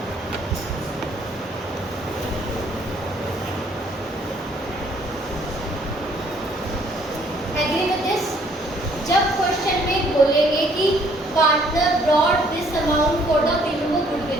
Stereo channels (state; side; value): normal; both; correlation 0.63